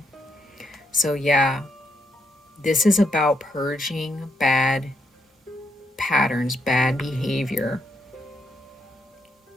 So yeah, this is about purging bad patterns, bad behavior.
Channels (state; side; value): normal; both; correlation 0.77